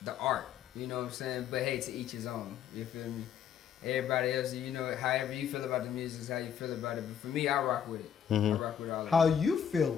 the art. You know what I'm saying? But hey, to each his own. You feel me? Everybody else, you know, however you feel about the music is how you feel about it. But for me, I rock with it. I rock with all of How it. you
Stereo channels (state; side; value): quieter; right; 8.6 dB